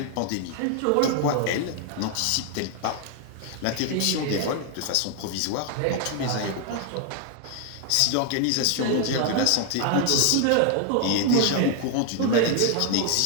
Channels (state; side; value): different; both; correlation 0.00